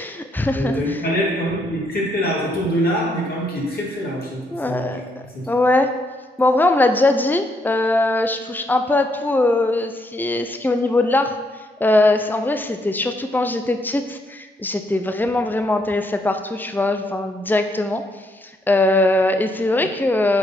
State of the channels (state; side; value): normal; both; correlation 0.74